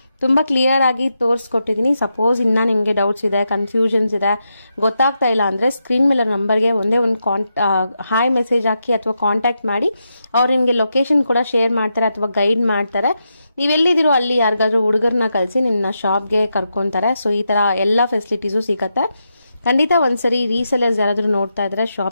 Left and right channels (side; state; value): both; inverted; correlation -0.85